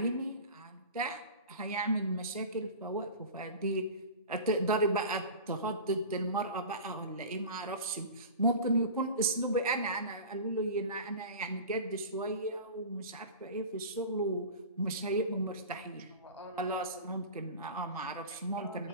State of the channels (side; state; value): both; inverted; correlation -0.34